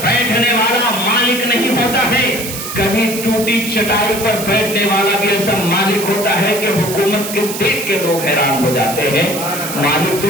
بیٹھنے والا مالک نہیں ہوتا ہے، کبھی ٹوٹی چٹائی پر بیٹھنے والا بھی ایسا مالک ہوتا ہے کہ حکومت کے دیکھ کے لوگ حیران ہو جاتے ہیں۔ مالک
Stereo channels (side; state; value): right; noise; hiss, 7 dB below the sound